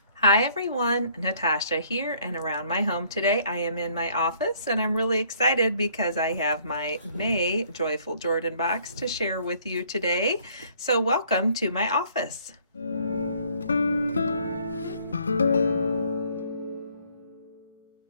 Hi everyone, Natasha here and around my home today. I am in my office and I'm really excited because I have my May Joyful Jordan box to share with you today. So welcome to my office.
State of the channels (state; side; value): inverted; both; correlation -0.61